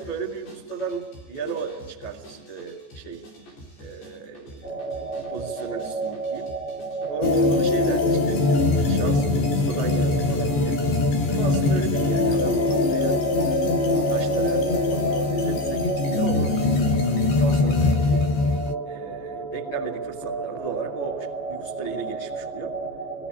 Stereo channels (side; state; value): right; late; 14 ms